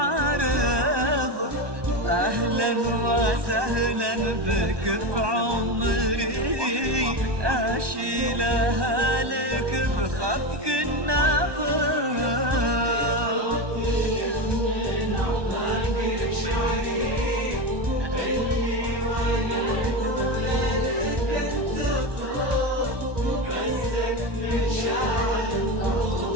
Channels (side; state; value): left; late; 1.2 ms